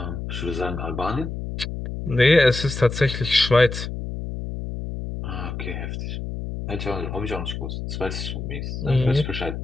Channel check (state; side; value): noise; left; hum, 6 dB below the sound